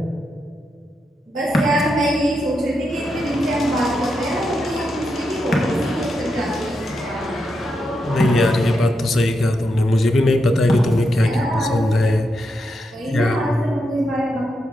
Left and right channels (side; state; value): both; normal; correlation 0.84